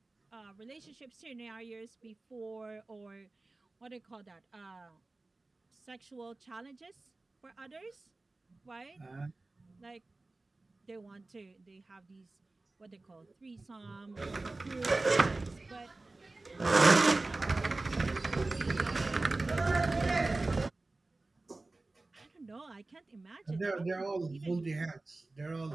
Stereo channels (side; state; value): left; quieter; 3.2 dB